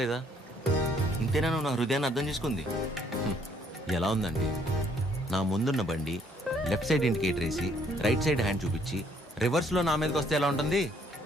లేదా? ఇంతేనా నువ్వు నా హృదయాన్ని అర్థం చేసుకుంది? ఎలా ఉందండి? నా ముందున్న బండి లెఫ్ట్ సైడ్ ఇండికేటర్ వేసి రైట్ సైడ్ హ్యాండ్ చూపించి రివర్స్లో నా మీదకి వస్తే ఎలా ఉంటుంది?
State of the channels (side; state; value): both; normal; correlation 0.65